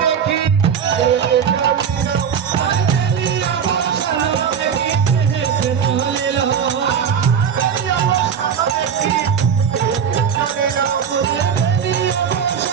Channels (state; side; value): quieter; left; 7.4 dB